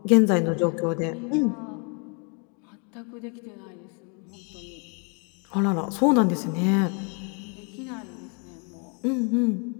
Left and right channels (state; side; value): quieter; right; 36.8 dB